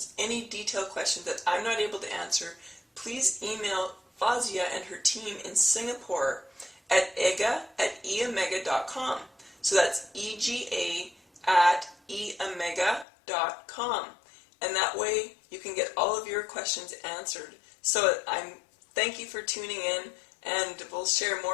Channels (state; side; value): drops out; right; at 13.1 s